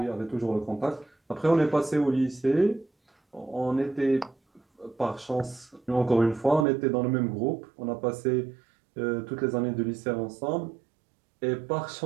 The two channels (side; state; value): left; drops out; at 6.7 s